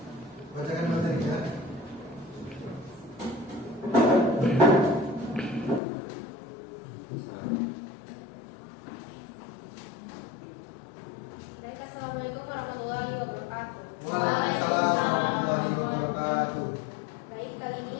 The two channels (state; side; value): drops out; right; at 5.8 s